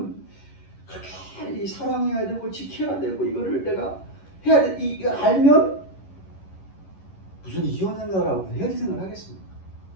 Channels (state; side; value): late; right; 11 ms